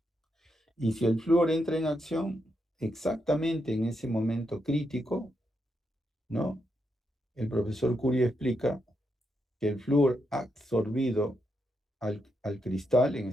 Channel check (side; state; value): both; normal; correlation 0.82